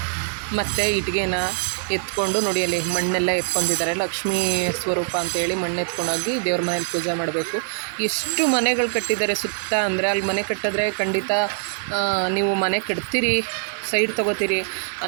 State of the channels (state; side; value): silent; left; 57 dB below the other